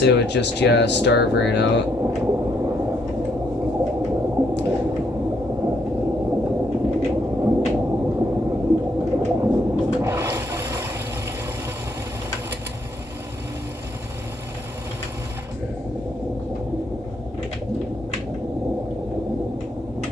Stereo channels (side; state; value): both; normal; correlation 0.72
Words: it would just, yeah, starve right out.